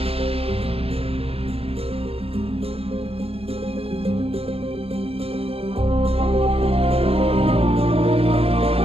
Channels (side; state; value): left; late; 0.28 ms